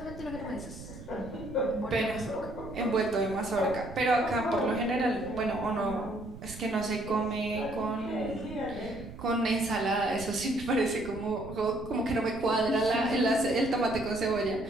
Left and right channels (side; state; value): right; noise; rumble, 14 dB below the sound